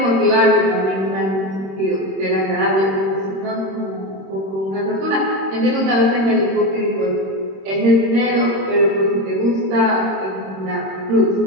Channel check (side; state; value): left; late; 26 ms